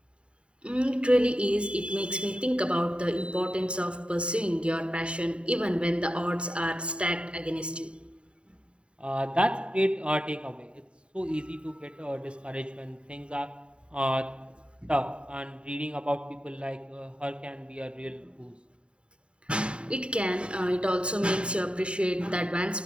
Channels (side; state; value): left; late; 0.055 ms